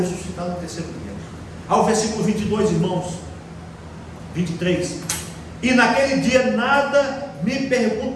no 3º dia. Ao versículo 22, irmãos, 23. E naquele dia nada me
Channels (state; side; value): identical; both; correlation 1.00